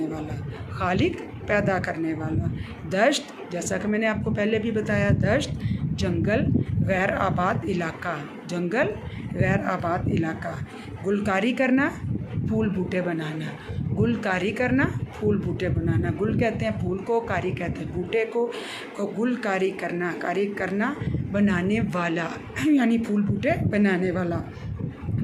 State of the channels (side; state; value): both; identical; correlation 1.00